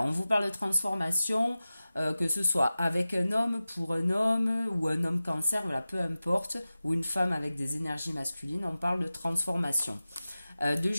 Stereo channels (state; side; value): inverted; both; correlation -0.96